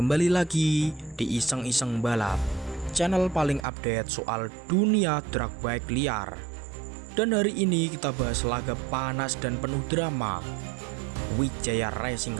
lagi di Iseng-Iseng Balap, channel paling update soal dunia drag bike liar. Dan hari ini kita bahas laga panas dan penuh drama, Wijaya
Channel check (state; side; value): drops out; left; at 3.7 s